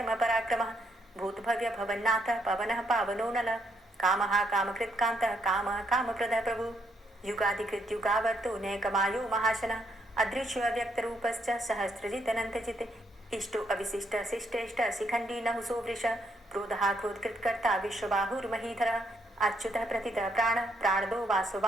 भूतभव्य भवन्नाथः पवनः पावनो नलः कामः कामकृत्कान्तः कामः कामप्रदः प्रभु युगाधिकृत्युगावर्तो नैकमायो महाशनः अदृश्यो अव्यक्तरूपश्च सहस्रजितनन्तजित् इष्टो अविशिष्ट शिष्टेष्ट शिखण्डी नहुसो वृष क्रोधः क्रोधकृत्कर्ता विश्वबाहुर्महीधरः अच्युतः प्रतितः प्राणदो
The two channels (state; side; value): normal; both; correlation 0.74